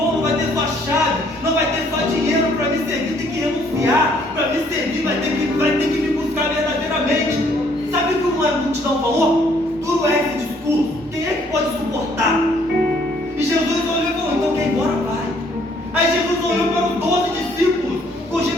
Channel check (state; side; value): normal; both; correlation 0.64